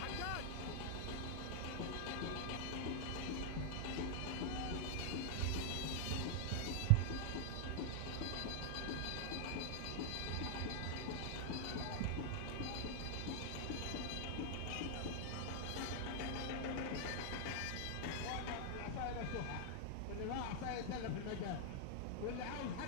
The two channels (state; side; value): different; both; correlation 0.00